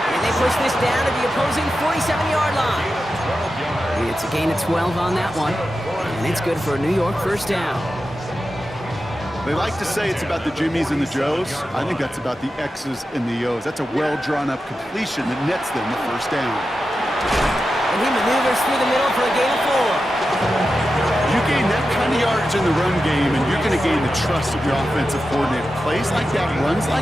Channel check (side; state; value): both; normal; correlation 0.91